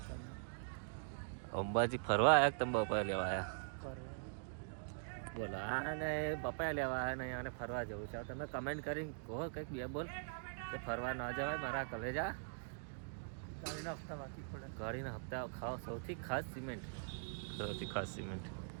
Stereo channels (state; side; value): silent; left; digital silence